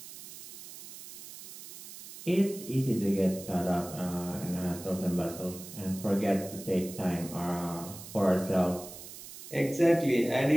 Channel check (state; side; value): noise; right; hiss, 14 dB below the sound